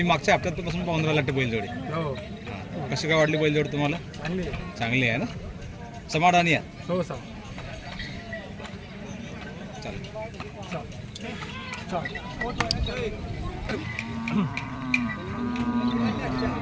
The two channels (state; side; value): identical; both; correlation 1.00